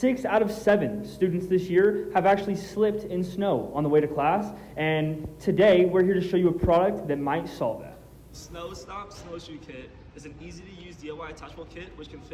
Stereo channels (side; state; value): both; identical; correlation 1.00